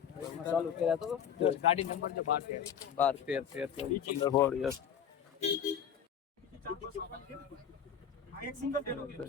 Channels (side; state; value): right; quieter; 8.1 dB